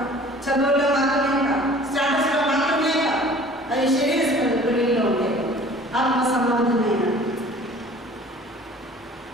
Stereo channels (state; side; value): normal; both; correlation 0.48